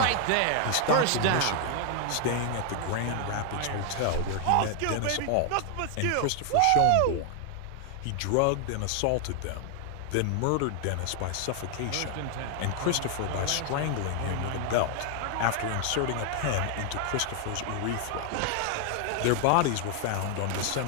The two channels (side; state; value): both; different; correlation 0.00